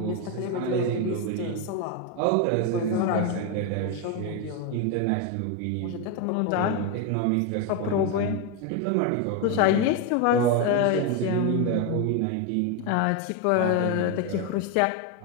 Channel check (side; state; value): both; different; correlation 0.02